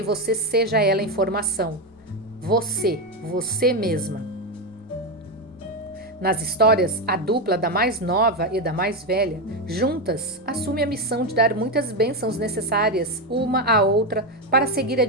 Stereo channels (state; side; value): normal; both; correlation 0.10